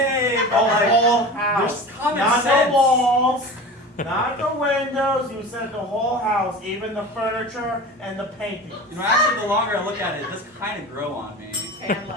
The but like, whole house. there's common Not sense. the walls. Not the windows. You said the whole house, even the furniture and the painting. You know, actually, the longer I look at it, it does kind of grow on me. And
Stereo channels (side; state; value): both; normal; correlation 0.34